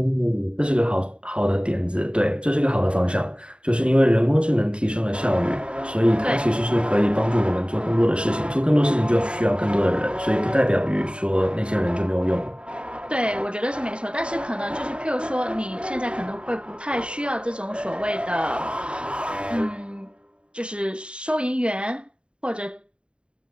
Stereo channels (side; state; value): left; late; 0.054 ms